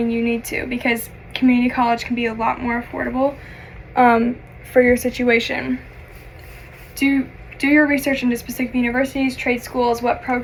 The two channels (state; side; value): identical; both; correlation 1.00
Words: you need to, because community college can be a lot more affordable for your situation. Do your research into specific universities, trade schools, what